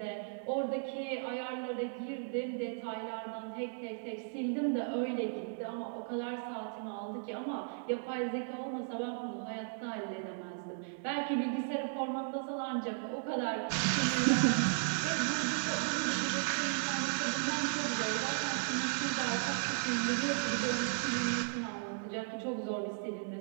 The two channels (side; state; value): left; silent; digital silence